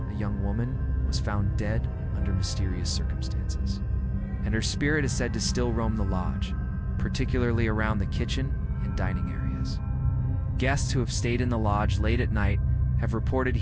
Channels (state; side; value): identical; both; correlation 1.00